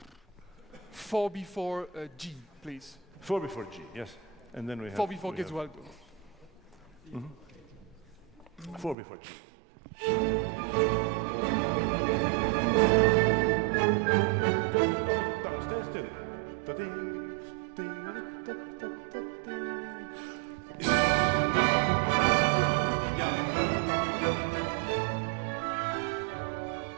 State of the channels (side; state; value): left; drops out; at 9.0 s